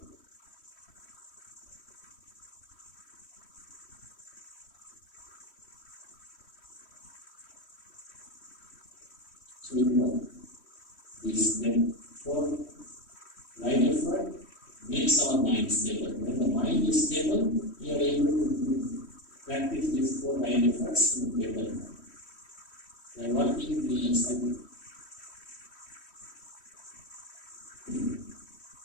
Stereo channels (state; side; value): late; right; 3.1 ms